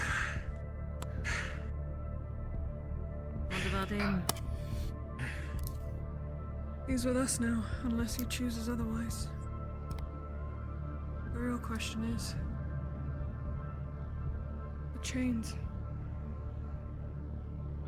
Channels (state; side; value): identical; both; correlation 1.00